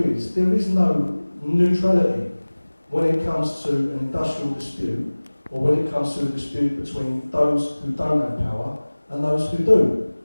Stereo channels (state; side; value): inverted; both; correlation -1.00